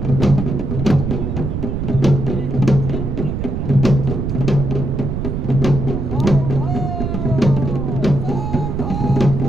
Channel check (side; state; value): right; noise; rumble, 2 dB below the sound